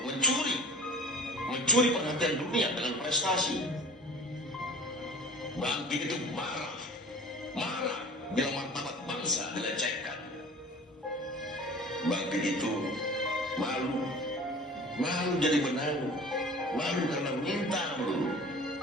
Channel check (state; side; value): normal; both; correlation 0.43